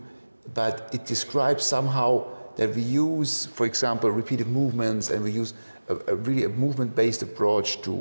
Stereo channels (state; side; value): inverted; both; correlation -1.00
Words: but it describes somehow that we use, for example, repeated movements, and we use a really movement-based approach